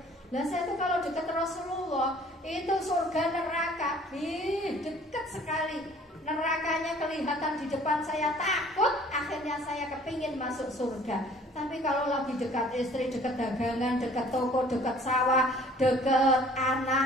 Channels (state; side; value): normal; both; correlation 0.53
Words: Nah saya itu kalau dekat Rasulullah, itu surga neraka, dekat sekali. Nerakanya kelihatan di depan saya, takut. Akhirnya saya kepingin masuk surga. Tapi kalau lagi dekat istri, dekat dagangan, dekat toko, dekat sawah, dekat